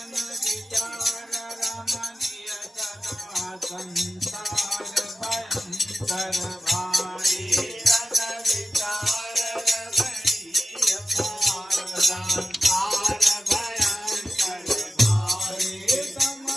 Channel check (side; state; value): both; normal; correlation 0.93